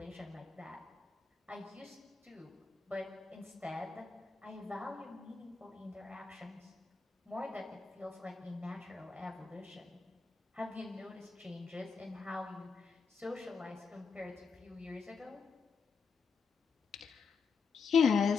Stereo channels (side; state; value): right; quieter; 5.2 dB